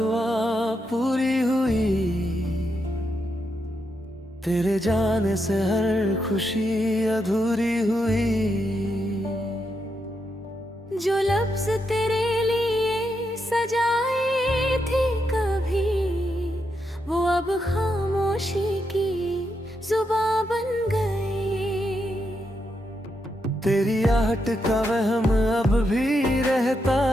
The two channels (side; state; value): both; normal; correlation 0.82